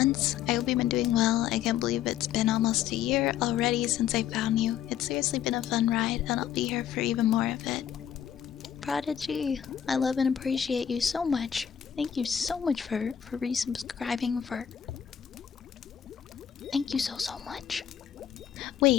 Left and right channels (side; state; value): right; quieter; 9.5 dB